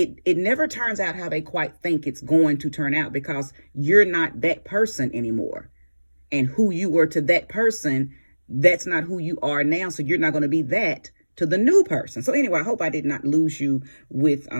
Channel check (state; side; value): inverted; both; correlation -1.00